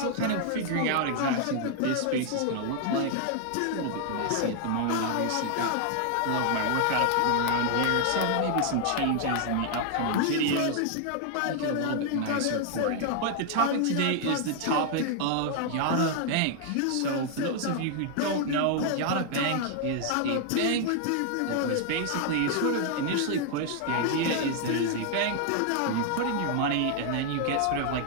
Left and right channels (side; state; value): both; different; correlation 0.00